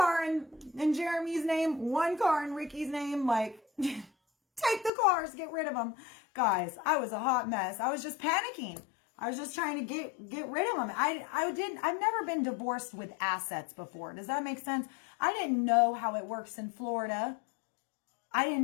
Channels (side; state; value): right; drops out; at 4.9 s